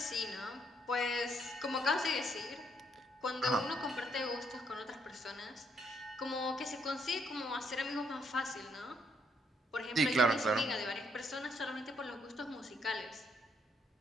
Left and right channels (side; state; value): both; normal; correlation 0.71